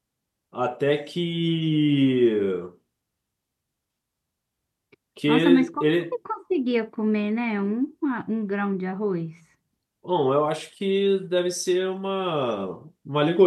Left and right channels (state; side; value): identical; both; correlation 1.00